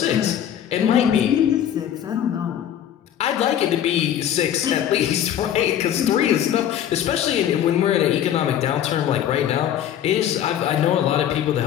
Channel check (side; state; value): right; quieter; 10.3 dB